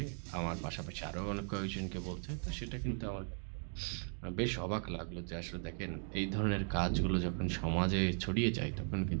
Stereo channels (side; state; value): left; silent; 52 dB below the other